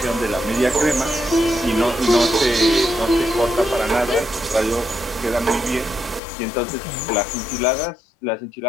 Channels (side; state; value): right; drops out; at 6.2 s